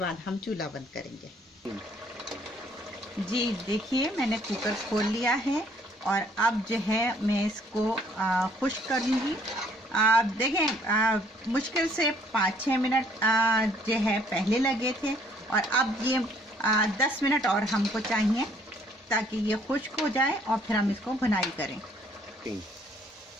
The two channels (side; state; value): both; normal; correlation 0.62